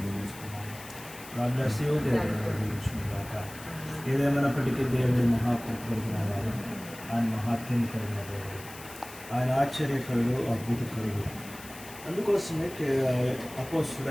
గాడ్ దేవుడు దీవించుగాక. ఏదేమైనప్పటికీ దేవుడి మహాకృప కలిగిన వారు, ఆయన మహాత్మ్యం కలిగిన దేవుడు, ఆయన ఆశ్చర్యకరుడు, అద్భుతకరుడు. అందుకోసమే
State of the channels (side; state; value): left; noise; hiss, 16 dB below the sound